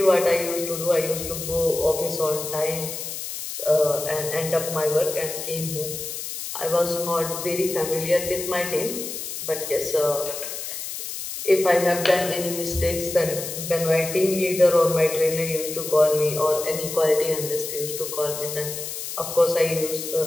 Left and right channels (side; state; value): left; noise; hiss, 7 dB below the sound